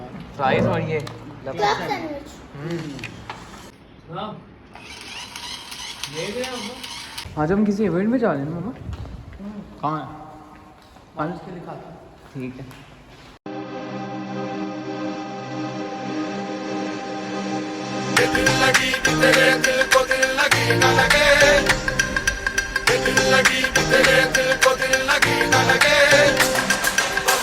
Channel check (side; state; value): both; identical; correlation 1.00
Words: रहे हैं। फ्राइज और ये आज हम किसी इवेंट में जा रहे हैं मामा। कहाँ है? आज उसके लिए खाता। ठीक है।